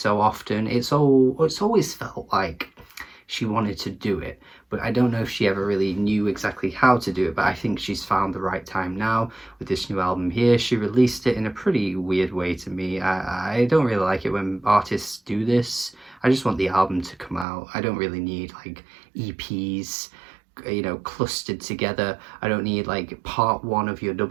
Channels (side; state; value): left; drops out; at 17.4 s